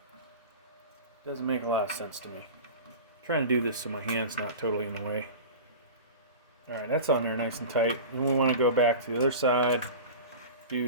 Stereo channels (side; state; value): both; inverted; correlation -0.32